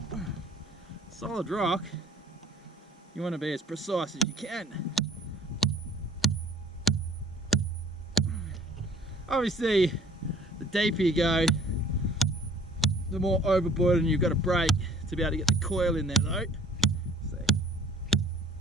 solid rock, you want to be as precise as you can. Obviously, the deeper you go, the more overburden you've got to break to be able to get the coil in there though. See.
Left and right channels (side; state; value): both; normal; correlation 0.54